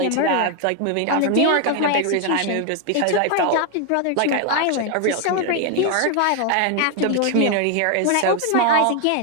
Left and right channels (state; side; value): different; both; correlation 0.01